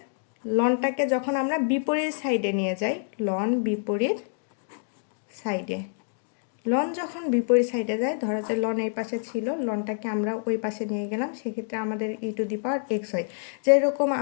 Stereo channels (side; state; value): right; silent; digital silence